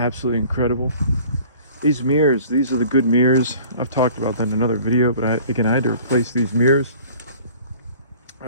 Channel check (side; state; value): both; inverted; correlation -0.49